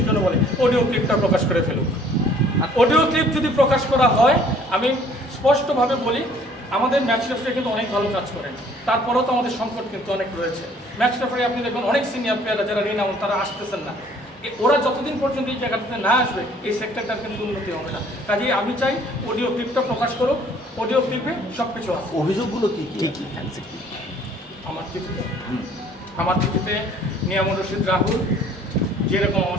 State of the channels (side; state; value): both; normal; correlation 0.57